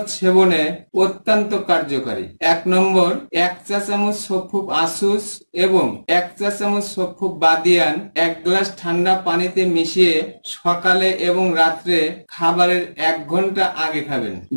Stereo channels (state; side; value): inverted; both; correlation -1.00